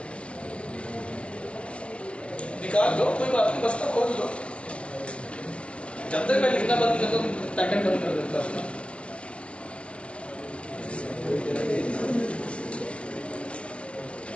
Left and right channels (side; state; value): right; late; 0.060 ms